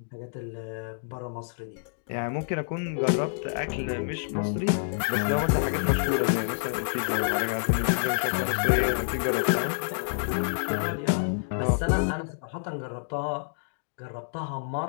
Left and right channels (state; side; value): silent; right; digital silence